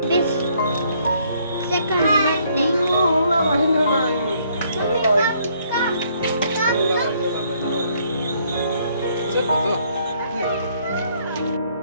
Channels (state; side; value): inverted; both; correlation -0.67